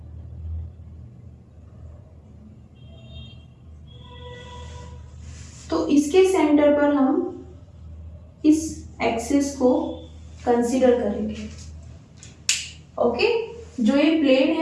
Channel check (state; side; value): identical; both; correlation 1.00